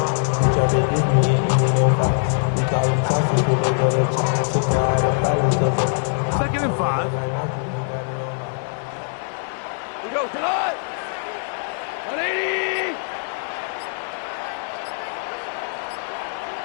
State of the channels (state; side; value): silent; right; 61 dB below the other